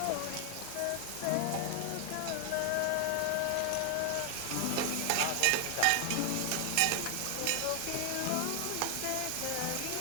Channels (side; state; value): both; different; correlation 0.00